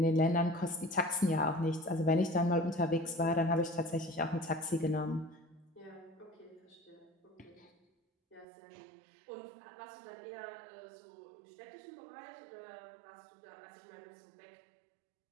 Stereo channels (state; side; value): drops out; left; at 8.5 s